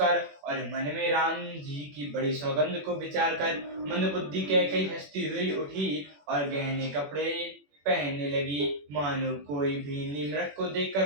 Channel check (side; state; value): left; late; 21 ms